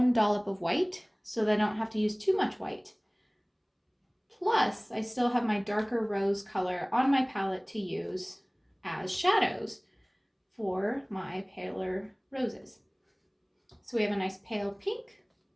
dollop of white so that I don't have to use too much white. Plus, I still have my darker rose color on my palette to use as shadows for my paler roses. So we have a nice pale pink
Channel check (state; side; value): identical; both; correlation 1.00